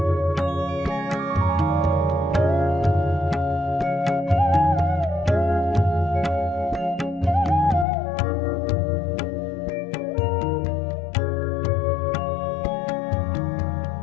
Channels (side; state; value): right; drops out; at 7.9 s